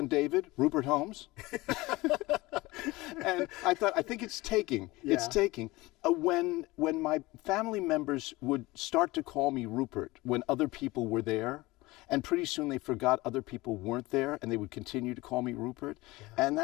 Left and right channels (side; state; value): right; quieter; 20.9 dB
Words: David, Rupert Holmes." And I thought, I think it's taking. Yeah. It's taking. When my family members would start to call me Rupert when other people were there, and pretty soon they forgot other people weren't there, and they would continue to call me Rupert. Yeah. And